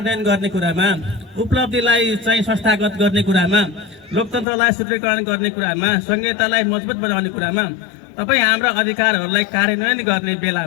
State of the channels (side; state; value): right; drops out; at 4.5 s